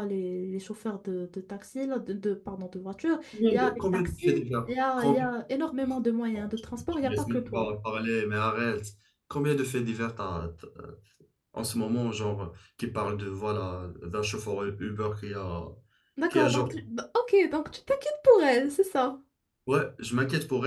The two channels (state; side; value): identical; both; correlation 1.00